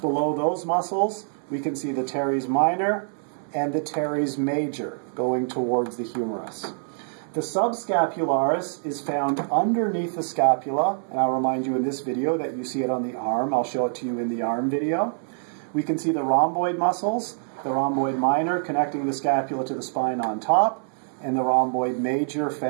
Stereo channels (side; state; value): left; silent; 58 dB below the other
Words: Below those muscles, we can see the teres minor and the teres major going towards the humerus. The subscapularis is found underneath the scapula, and I'll remind you in this video that you see it on the arm. I'll show it to you in the arm video. We can see the rhomboid muscles, the rhomboid minor connecting the scapula to the spine on top, and the rhomboid major